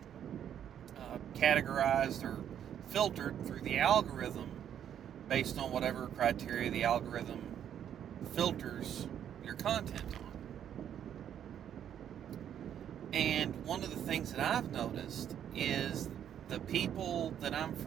categorized or filtered through the algorithm based on whatever criteria the algorithm filters your content on. And one of the things that I've noticed is the people that I'm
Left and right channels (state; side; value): quieter; left; 9.6 dB